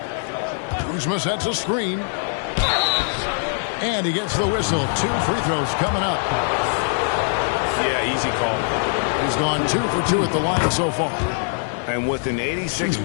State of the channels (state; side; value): silent; right; digital silence